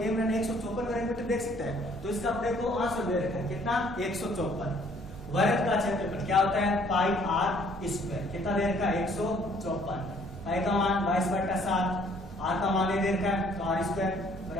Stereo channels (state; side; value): normal; both; correlation 0.61